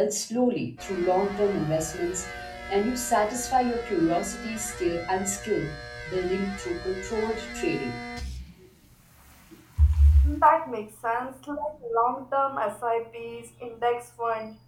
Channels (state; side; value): identical; both; correlation 1.00